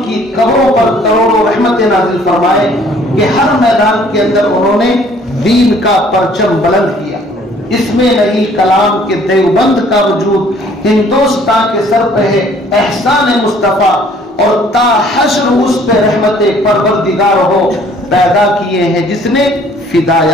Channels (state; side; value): normal; both; correlation 0.58